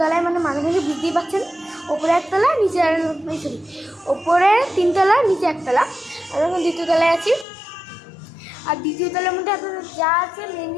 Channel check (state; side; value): drops out; right; at 7.5 s